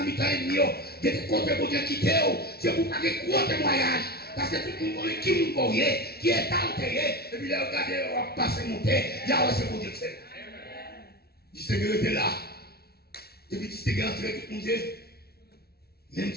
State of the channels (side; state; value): right; late; 0.45 ms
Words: le mi-temps et demi. Vous avez côté pour Dieu quitter, c'est pour pas que gros témoignage. Parce que tout le monde qui vous voyez, qui est enterré, et puis là, regardez, on va passer monter, il y a aussi pour Dieu que c'est. Distinguer était là. Et puis distinguer entre tout le monde. Même